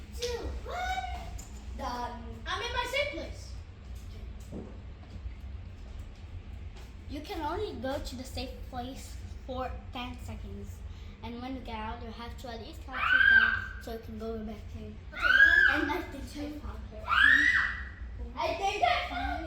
2, 1. Done. I'm in my safe place. You can only go to the safe place for 10 seconds. And when you get out, you have to at least count to 10 so you can go back in. And I think I found her. I think I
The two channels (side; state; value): both; identical; correlation 1.00